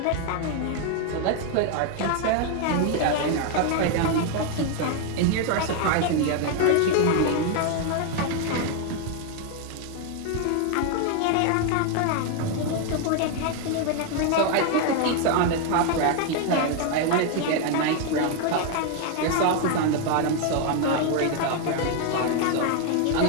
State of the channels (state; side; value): different; both; correlation 0.01